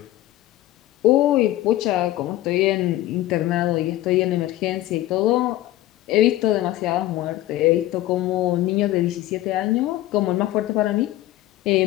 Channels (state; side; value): quieter; right; 15.2 dB